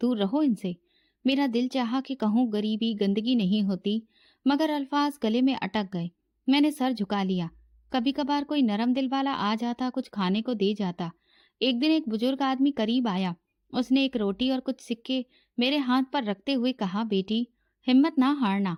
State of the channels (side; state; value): both; identical; correlation 1.00